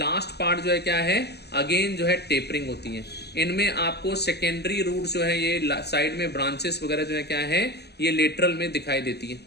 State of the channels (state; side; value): late; right; 0.48 ms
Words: पार्ट जो है क्या है, अगेन जो है टेपरिंग होती है। इनमें आपको सेकेंडरी रूट जो है ये साइड में ब्रांचेस वगैरह जो है क्या है, ये लेटरल में दिखाई देती है।